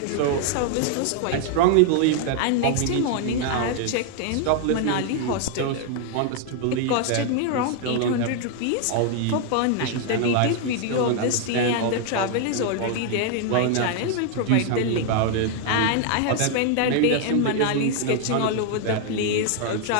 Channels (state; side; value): different; both; correlation 0.00